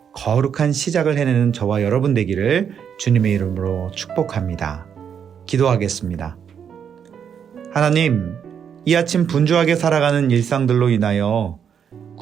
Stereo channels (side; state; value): left; quieter; 7.8 dB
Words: 거룩한 시작을 해내는 저와 여러분 되기를 주님의 이름으로 축복합니다. 기도하겠습니다. 하나님, 이 아침 분주하게 살아가는 일상들로 인하여